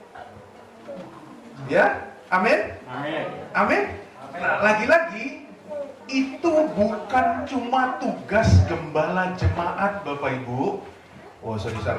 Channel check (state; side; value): identical; both; correlation 1.00